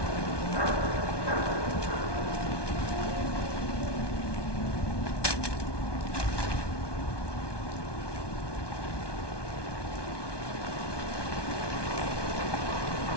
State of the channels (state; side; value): late; right; 1.2 ms